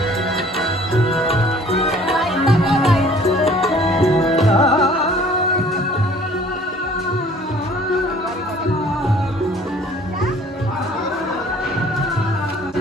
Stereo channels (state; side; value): normal; both; correlation 0.53